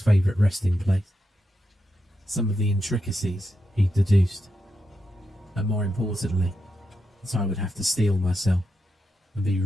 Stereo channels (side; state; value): both; normal; correlation 0.86